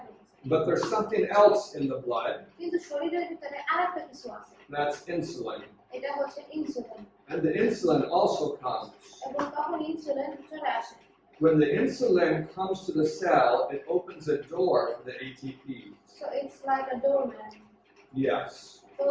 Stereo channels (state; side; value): identical; both; correlation 1.00